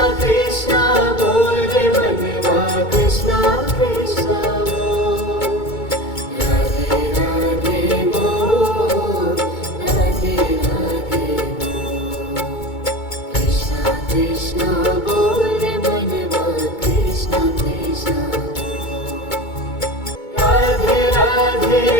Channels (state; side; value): late; right; 2.2 ms